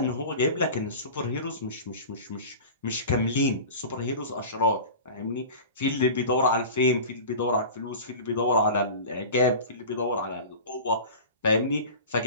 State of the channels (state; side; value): inverted; both; correlation -0.34